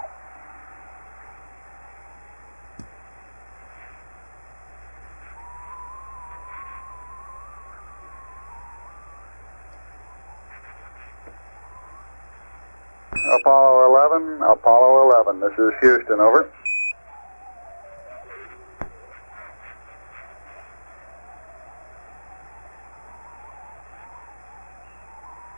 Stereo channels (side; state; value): both; inverted; correlation -1.00